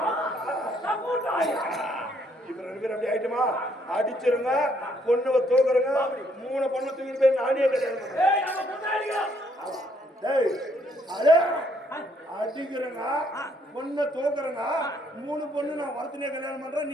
இப்ப 2 பேர் அப்படி ஆயிட்டுமா அடிச்சிருங்க பொண்ணுவ தூக்குறங்க 3 பொண்ணு தூக்கிட்டு போய் நானே அடிக்கிறங்க பொண்ணை தூக்குறங்க 3 பொண்ணு நான் வரத்தினே கல்யாணம் பண்றேன்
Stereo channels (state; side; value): normal; both; correlation 0.69